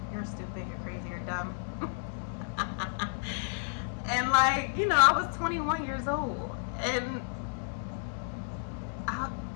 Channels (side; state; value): right; silent; digital silence